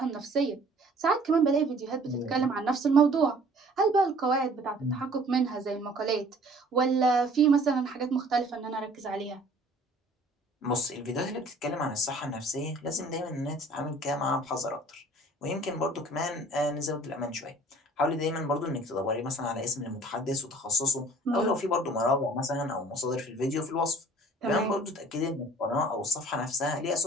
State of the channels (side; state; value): both; normal; correlation 0.52